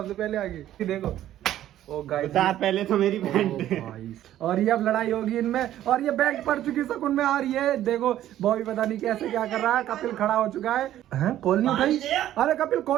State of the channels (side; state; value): left; quieter; 12.6 dB